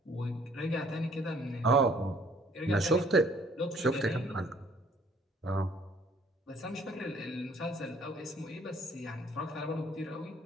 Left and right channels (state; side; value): normal; both; correlation 0.59